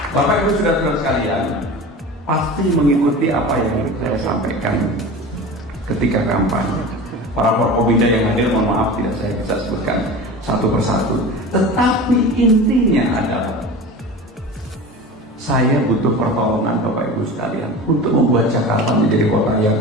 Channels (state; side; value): normal; both; correlation 0.33